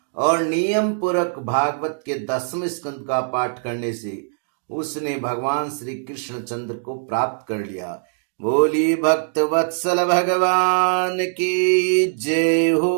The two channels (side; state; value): left; silent; digital silence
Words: और नियम पूर्वक भागवत के 10वें स्कंद का पाठ करने से उसने भगवान श्री कृष्ण चंद्र को प्राप्त कर लिया। बोली भक्त वत्सल भगवान की जय